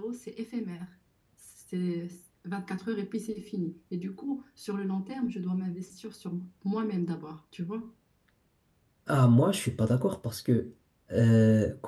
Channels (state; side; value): identical; both; correlation 1.00